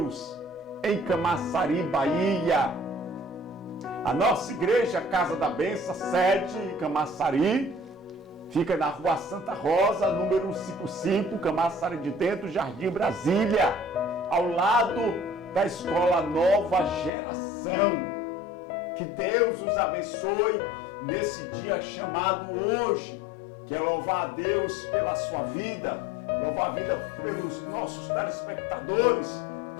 em Camaçari, Bahia. A nossa Igreja Casa da Bênção, sede em Camaçari, fica na Rua Santa Rosa, número 155, Camaçari de Dentro, Jardim Brasília, ao lado da Escola Nova Geração. Que Deus os abençoe nesse dia chamado hoje. Quero louvar a Deus pela sua vida, louvar a vida pelos nossos telespectadores,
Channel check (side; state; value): right; drops out; at 17.1 s